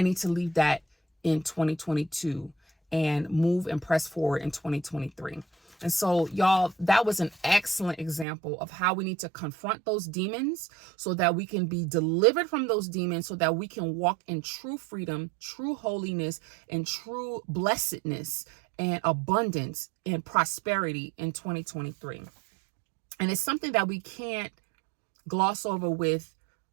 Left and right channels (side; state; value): left; drops out; at 8.2 s